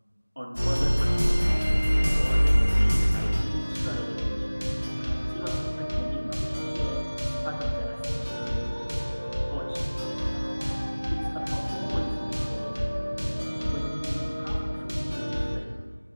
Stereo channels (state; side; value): inverted; both; correlation -1.00